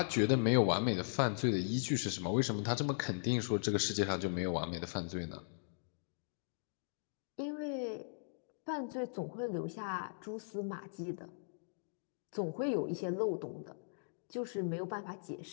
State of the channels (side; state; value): right; silent; digital silence